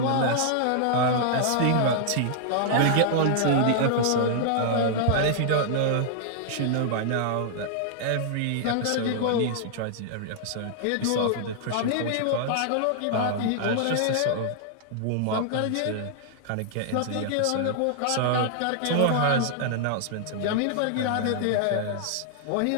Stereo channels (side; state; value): both; different; correlation -0.01